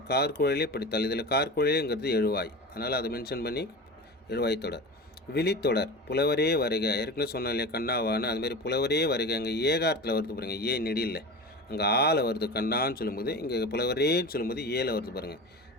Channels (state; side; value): normal; both; correlation 0.30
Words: கார்குழலே படித்தால். இதில் கார்குழலேங்கிறது எழுவாய், அதனால் அதை மென்ஷன் பண்ணி எழுவாய் தொடர். விழித்தொடர். புலவரே வருக. ஏற்கனவே சொன்னோம் இல்லையா கண்ணாவான்னு, அதுமாதிரி புலவரே வருக. அங்கே ஏகாரத்தில் வருது பாருங்கள், ஏ நெடியில். அங்கே ஆல வருது கண்ணான்னு சொல்லும்போது, இங்கே புலவரேன்னு சொல்லும்போது ஏல வருது பாருங்கள்.